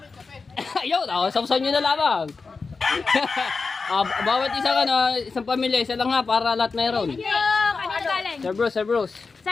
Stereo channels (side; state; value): right; quieter; 4.5 dB